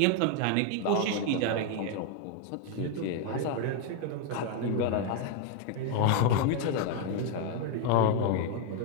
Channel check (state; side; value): different; both; correlation 0.00